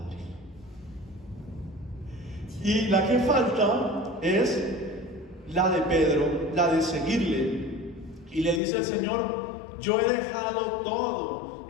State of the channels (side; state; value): right; drops out; at 8.6 s